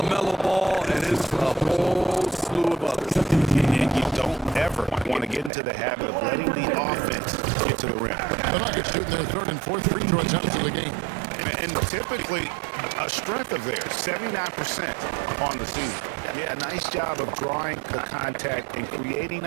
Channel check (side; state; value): left; drops out; at 5.5 s